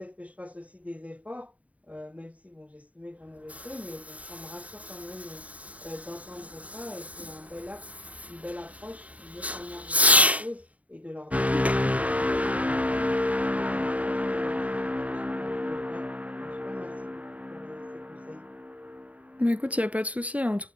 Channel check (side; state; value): left; late; 0.068 ms